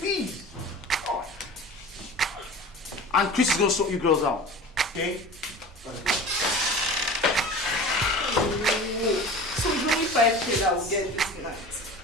And Chris is going to sort you girls out. Okay? So it's only 5K that we'll get this night.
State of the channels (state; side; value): normal; both; correlation 0.37